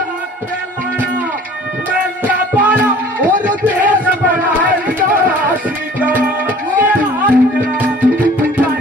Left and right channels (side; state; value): both; normal; correlation 0.49